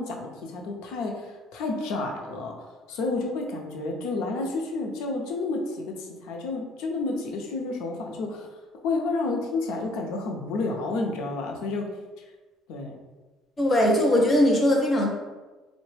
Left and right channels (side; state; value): both; normal; correlation 0.63